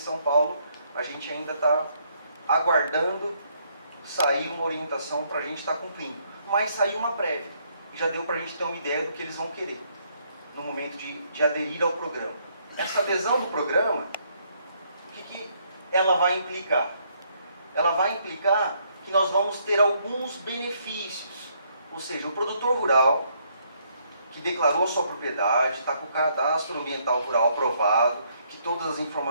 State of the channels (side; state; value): both; inverted; correlation -0.70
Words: Paulo, a gente ainda está aguardando sair uma orientação para a gente estar cumprindo. Mas saiu uma prévia, e já deu para a gente ter uma ideia do que eles vão querer no momento de aderir ao programa. Essa adesão do programa, o que ela vai implicar? Ela vai implicar que nós vamos ter alguns benefícios. Ou seja, o produtor rural que declarou sua propriedade, está com o cadastro ambiental rural aprovado, que todas as